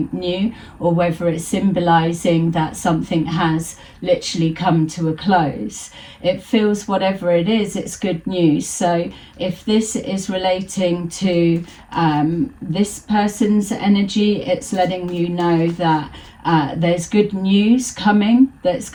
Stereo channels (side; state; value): both; identical; correlation 1.00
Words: new, or whether it's symbolizing that something has literally come to a close. It feels, whatever it is, it's good news. So if this is relating to this person's energy, it's letting you know that there's good news coming that's